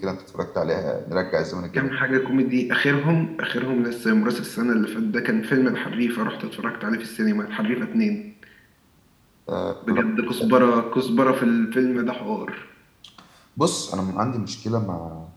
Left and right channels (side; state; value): both; identical; correlation 1.00